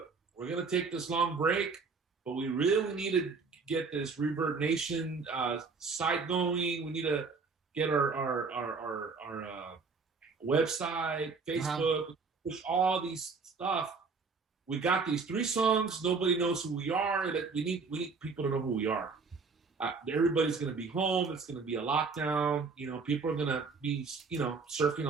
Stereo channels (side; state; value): left; quieter; 4.7 dB